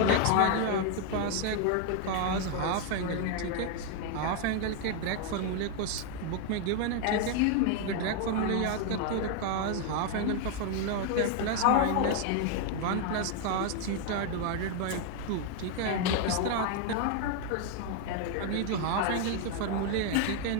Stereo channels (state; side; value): different; both; correlation 0.00